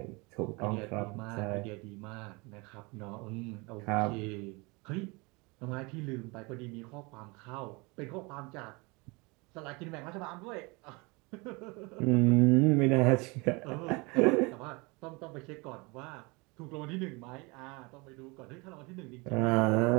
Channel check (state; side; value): quieter; left; 27.1 dB